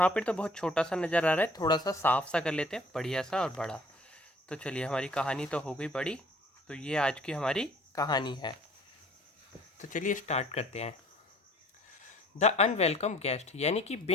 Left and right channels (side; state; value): both; normal; correlation 0.55